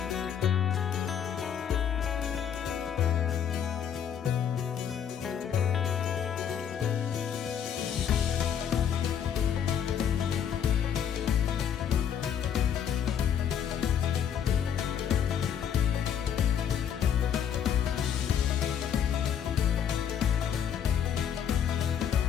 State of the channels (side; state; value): right; quieter; 8.5 dB